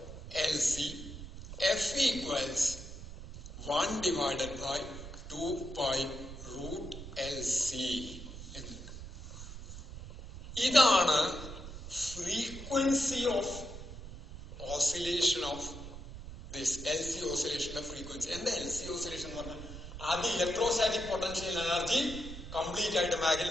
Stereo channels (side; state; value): right; noise; rumble, 11 dB below the sound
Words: f equals 1/2π√LC. ഇതാണ് frequency of oscillation of this LC ഓസിലേഷന്റെ ഫ്രീക്വൻസി. എന്താ LC ഓസിലേഷൻ എന്ന് പറഞ്ഞാൽ? ആദ്യം ഇലക്ട്രോസ്റ്റാറ്റിക് പൊട്ടൻഷ്യൽ എനർജി കംപ്ലീറ്റ് ആയിട്ട്